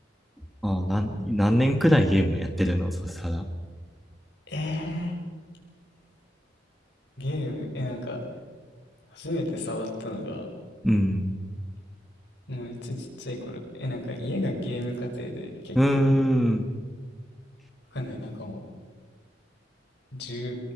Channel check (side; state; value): both; normal; correlation 0.88